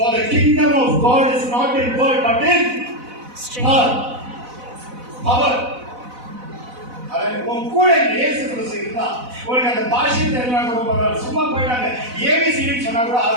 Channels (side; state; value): left; late; 4.0 ms